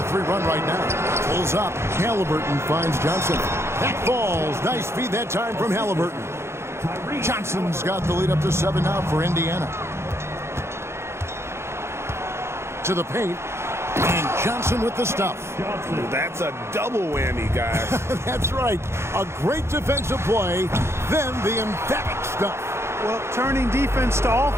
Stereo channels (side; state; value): left; late; 0.13 ms